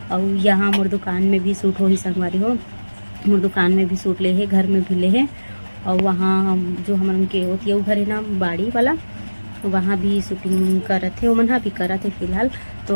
और यहाँ मोर दुकान में भी शूट हो ही संगवारी हो। मोर दुकान में भी शूट ले है, घर में भी ले है। और वहाँ जो हम उनके होती है वो घर है ना बाड़ी वाला, वहाँ भी शूटिंग करत थे। वो मन भी करत है फिलहाल। तो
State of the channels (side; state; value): both; inverted; correlation -1.00